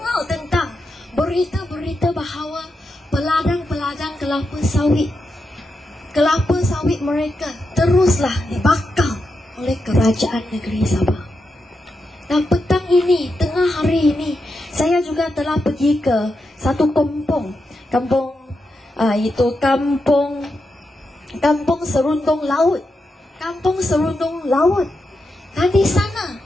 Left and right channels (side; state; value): both; normal; correlation 0.86